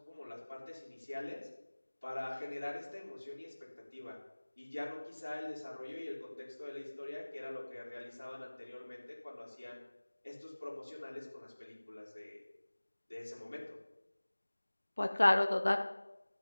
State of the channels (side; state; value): both; inverted; correlation -1.00